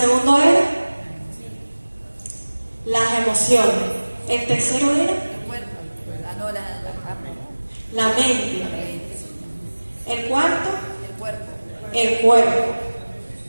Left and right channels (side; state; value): both; inverted; correlation -1.00